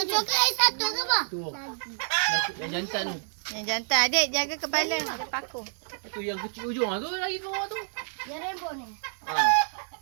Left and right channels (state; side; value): silent; left; 59 dB below the other